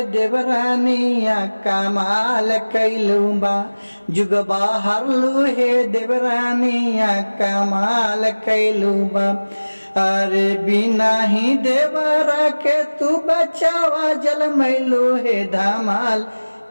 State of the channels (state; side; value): inverted; both; correlation -1.00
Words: देवरानिया कमाल कैलू बा, जुग बाहर लुहे देवरानिया कमाल कैलू बा। अरे बिना ही देवरा के तू बचावा जल मैलू है धमाल